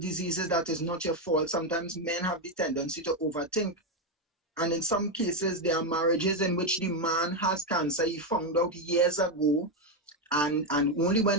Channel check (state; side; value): normal; both; correlation 0.07